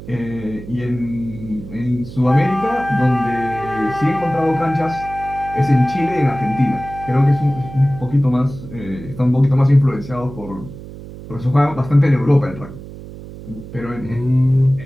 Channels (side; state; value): right; noise; hum, 14 dB below the sound